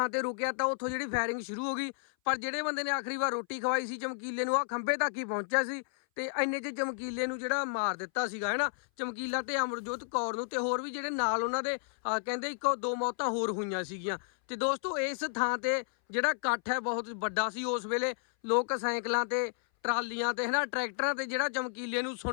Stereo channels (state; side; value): silent; right; 56 dB below the other